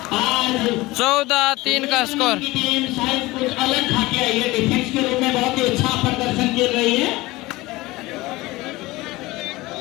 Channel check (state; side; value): quieter; right; 20.2 dB